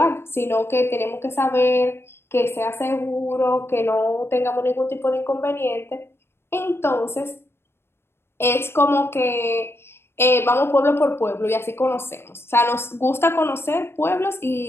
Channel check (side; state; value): right; late; 0.12 ms